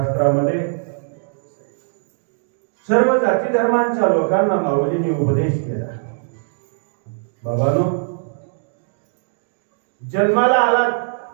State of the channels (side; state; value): left; silent; digital silence